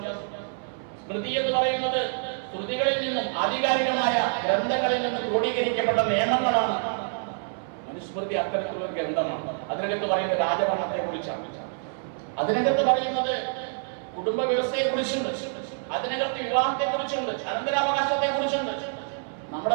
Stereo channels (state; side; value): silent; left; 59 dB below the other